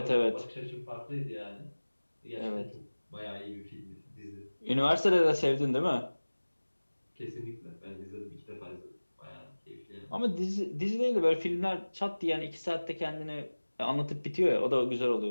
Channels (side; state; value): both; inverted; correlation -1.00